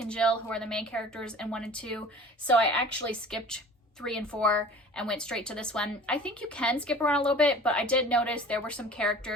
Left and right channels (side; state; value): both; normal; correlation 0.43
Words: and Jill, who are the main characters in 1 and 2. So I actually skipped 3 and 4 and went straight to this one. I think you can skip around a little bit, but I did notice there were some